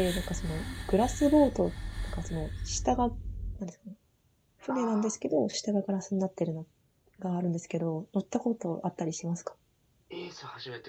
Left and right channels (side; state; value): both; identical; correlation 1.00